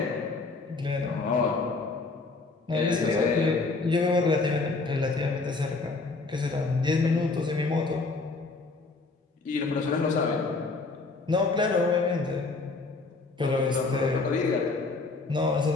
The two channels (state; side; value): quieter; right; 3.8 dB